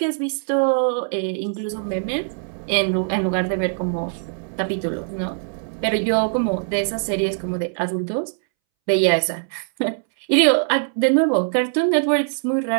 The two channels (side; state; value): left; silent; 64 dB below the other